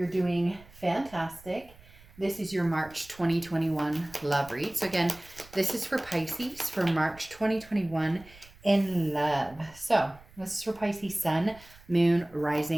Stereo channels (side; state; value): right; noise; rumble, 23 dB below the sound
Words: doing fantastic. This is your March 2021 love read. So again, this is for Pisces for March 2021 in love. So this is for Pisces Sun, Moon,